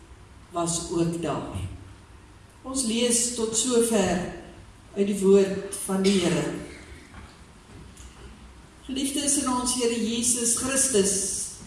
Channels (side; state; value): both; identical; correlation 1.00